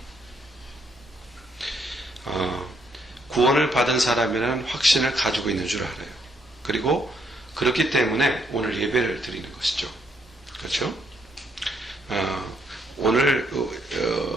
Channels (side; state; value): both; normal; correlation 0.73